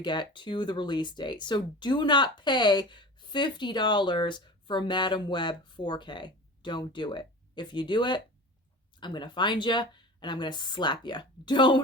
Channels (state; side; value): normal; both; correlation 0.35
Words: get to the release date. So do not pay $50 for Madam Web 4K. Don't do it. If you do it, I'm going to find you and I'm going to slap you.